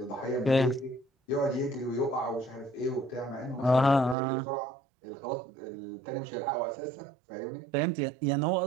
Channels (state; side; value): drops out; left; at 4.2 s